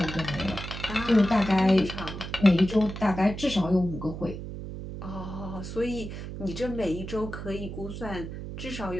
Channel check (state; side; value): noise; right; hum, 8 dB below the sound